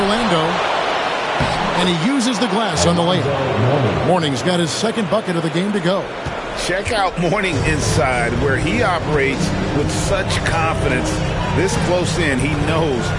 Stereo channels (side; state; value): both; identical; correlation 1.00